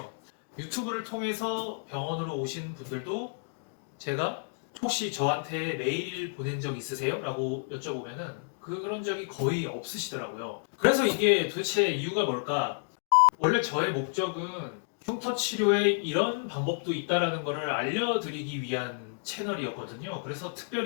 유튜브를 통해서 병원으로 오신 분들도 제가 혹시 저한테 메일 보낸 적 있으세요? 라고 여쭤보면은 그런 적이 거의 없으시더라고요. 그래서 이게 도대체 이유가 뭘까? 원래 저의 목적은 흉터 치료에 이런 방법도 있다라는 것을 알려드리기 위한 채널이었거든요. 그래서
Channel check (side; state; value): right; silent; digital silence